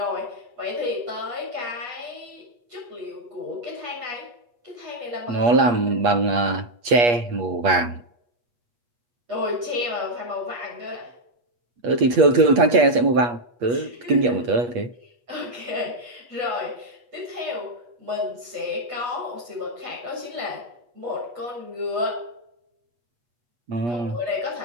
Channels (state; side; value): late; left; 8.4 ms